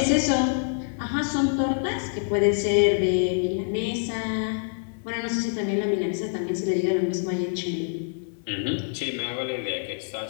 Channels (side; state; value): right; silent; digital silence